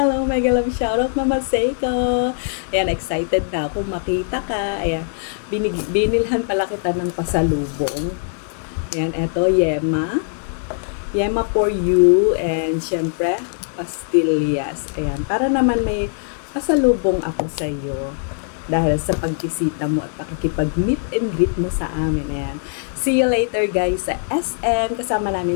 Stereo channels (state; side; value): silent; right; digital silence